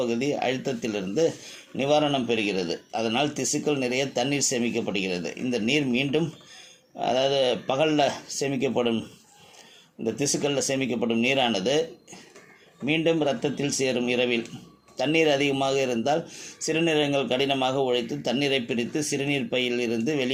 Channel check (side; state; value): both; identical; correlation 1.00